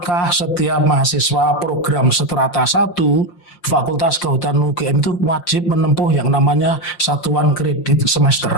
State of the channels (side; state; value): right; late; 5.7 ms